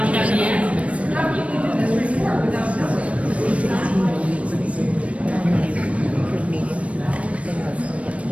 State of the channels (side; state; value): left; late; 0.064 ms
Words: have the answers.